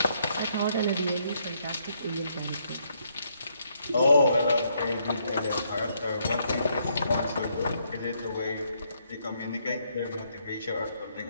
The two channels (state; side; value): inverted; both; correlation -0.73